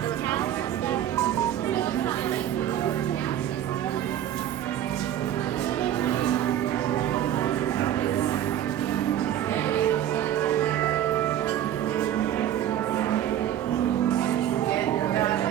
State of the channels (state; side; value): quieter; left; 11.3 dB